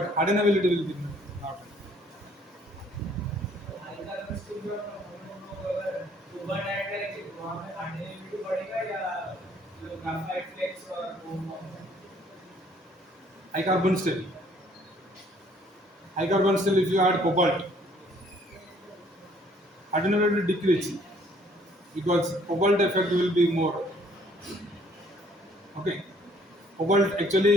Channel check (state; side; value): normal; both; correlation 0.61